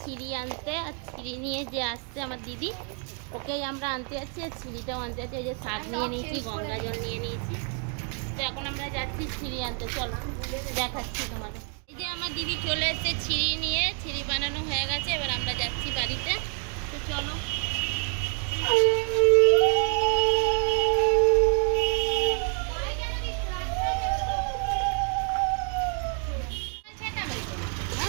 ছিঁড়ি আনতে। আর ছিঁড়ি নিয়ে যে আসছে আমার দিদি, ওকেই আমরা আনতে যাচ্ছি। আর ছিঁড়িটাও আনতে যাচ্ছি। এই যে শাক নিয়ে নিয়েছি, গঙ্গা জল নিয়ে নিয়েছি। তো এখন আমরা যাচ্ছি ছিঁড়ি আনতে। চলো দেখাচ্ছি তোমাদের। এই যে আমার দিদি চলে এসেছে ছিঁড়ি নিয়ে। ছিঁড়ি বানানো হয়ে গেছে, এবার আমরা যাচ্ছি বাড়িতে। তো চলো।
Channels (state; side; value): quieter; left; 40.0 dB